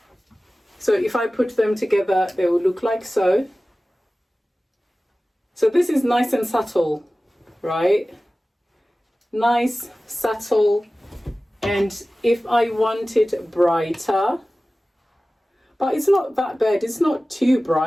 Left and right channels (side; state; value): both; normal; correlation 0.97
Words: So if I put them together, they will look like so. So this is nice and subtle, right? Nice, subtle, and if I want it brighter, but it's not that bad, it's not too